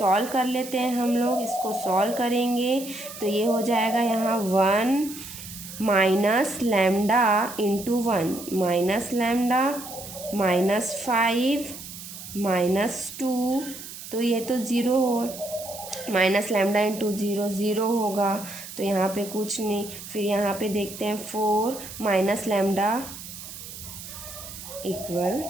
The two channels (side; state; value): right; noise; hiss, 12 dB below the sound